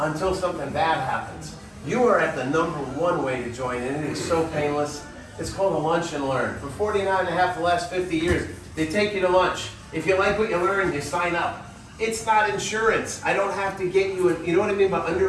something bad happens. You are at the #1 way to join in. It is so painless. It's called a lunch and learn. For 49 and a half the last 50 years, they take you to lunch. If you like what you learn, you sign up. It's not insurance. I don't have to get you, you know what I mean by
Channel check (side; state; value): both; identical; correlation 1.00